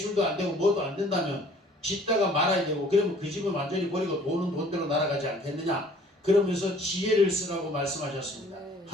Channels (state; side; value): normal; both; correlation 0.54